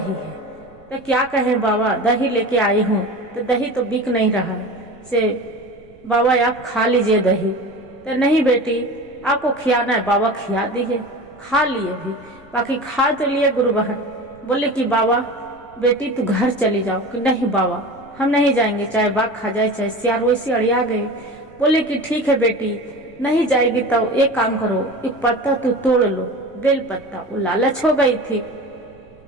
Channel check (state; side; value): noise; right; rumble, 27 dB below the sound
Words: है? तो क्या कहें बाबा, दही लेके आई हूँ, तो दही तो बिक नहीं रहा से बाबा आप खा लीजिए दही। तो नहीं बेटी आपको खियाना है, बाबा खिया दिए, खा लिए भी, बाकी खा तो लिए गुरु बहन। बोले कि बाबा बेटी तू घर चली जाओ, कि नहीं बाबा हम नहीं जाएंगे, चाहे बाघ खा जाए चाहे सियार, वैसे अड़िया गए। बोले कि ठीक है बेटी नहीं जाएगी तो एक काम करो, एक पत्ता तू तोड़ लो, बेल पत्ता। वो लालच हो गई थी,